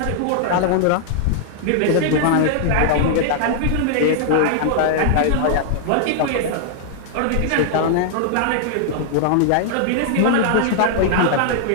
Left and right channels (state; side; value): different; both; correlation -0.01